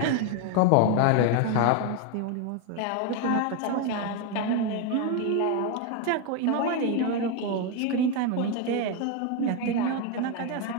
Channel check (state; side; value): different; both; correlation 0.01